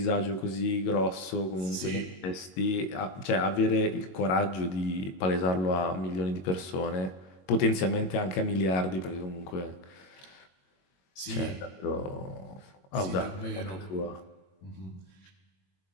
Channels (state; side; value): late; right; 21 ms